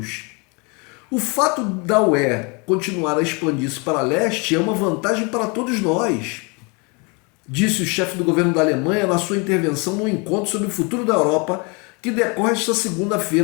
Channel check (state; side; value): quieter; right; 30.9 dB